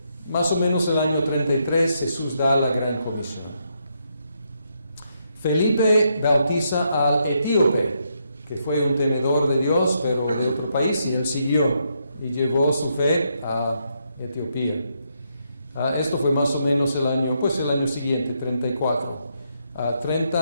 Más o menos el año 33 Jesús da la gran comisión. Felipe bautiza al etíope, que fue un temedor de Dios, pero de otro país, y él siguió y llevó su fe a Etiopía. Esto fue más o menos el año siguiente, 34.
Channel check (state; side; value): inverted; both; correlation -0.78